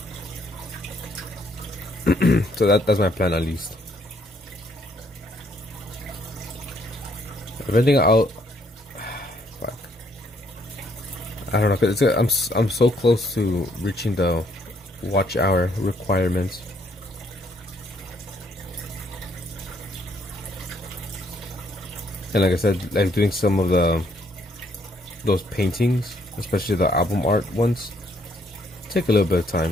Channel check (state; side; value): normal; both; correlation 0.69